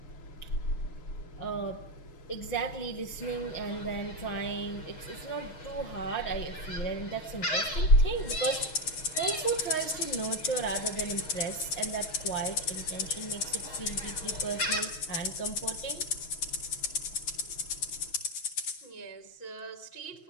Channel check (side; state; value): right; late; 6.3 ms